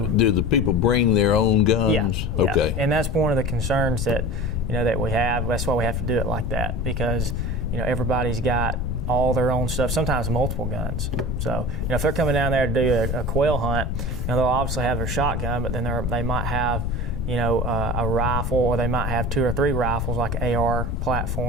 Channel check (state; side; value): noise; left; rumble, 1 dB below the sound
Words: Do the people bring their own guns? Yeah. Okay. And that's one of the concerns that that we have. That's why we have to do it like that, because everybody's got all their own stuff, sometimes multiple guns. So if they're coming down there to do a quail hunt, they'll obviously have their shotgun, but then they might have a rifle, or they might have 2 or 3 rifles, like an AR